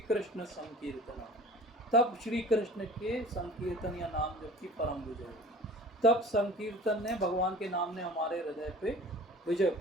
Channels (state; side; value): normal; both; correlation 0.43